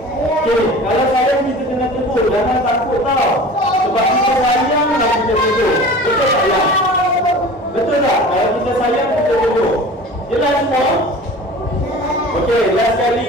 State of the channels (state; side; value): normal; both; correlation 0.39